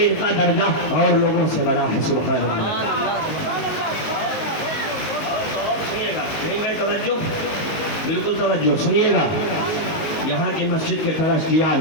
ان کا درجہ اور لوگوں سے بڑا ہے. سبحان اللہ. سنیے گا, نہیں میں توجہ, بالکل توجہ سنیے گا. یہاں کی مسجد کے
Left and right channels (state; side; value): late; right; 19 ms